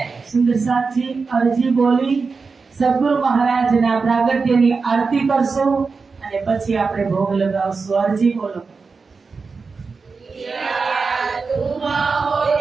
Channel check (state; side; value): quieter; left; 4.6 dB